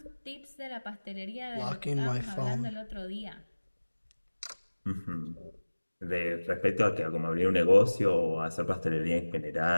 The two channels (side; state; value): both; inverted; correlation -1.00